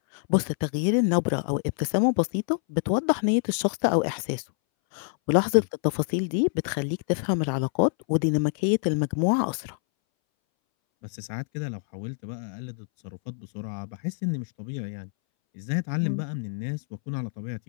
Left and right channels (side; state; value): right; silent; 61 dB below the other